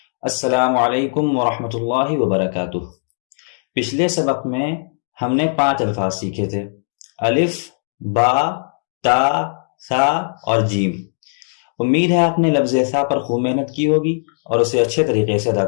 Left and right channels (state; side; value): silent; right; digital silence